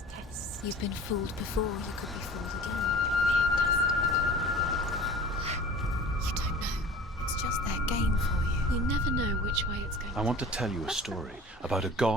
test. You've been fooled before, you could be fooled again. You don't know. It's just their game for you. You never know which way it's going. I want to tell you a story about a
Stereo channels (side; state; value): both; normal; correlation 0.43